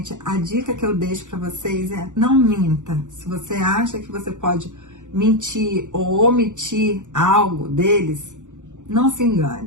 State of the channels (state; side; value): late; left; 0.85 ms